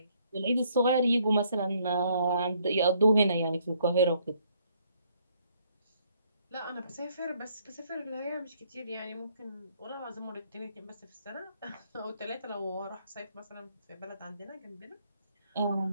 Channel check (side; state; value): both; inverted; correlation -0.68